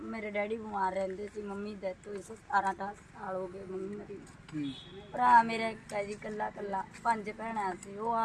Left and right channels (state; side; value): identical; both; correlation 1.00